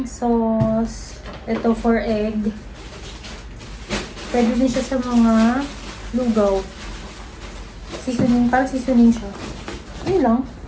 sauce. Ito for egg. Pwede din siya sa mga lugaw. Seasoning, parang seasoning siya. Yun lang.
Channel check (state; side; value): identical; both; correlation 1.00